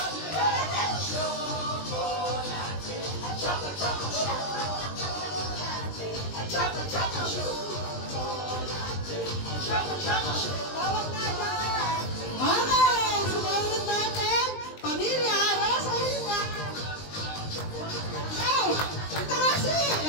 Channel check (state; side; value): late; right; 20 ms